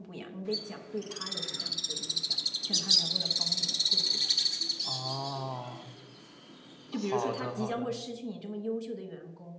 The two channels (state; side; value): identical; both; correlation 1.00